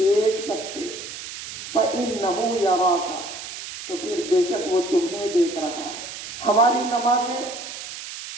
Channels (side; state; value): right; noise; hiss, 10 dB below the sound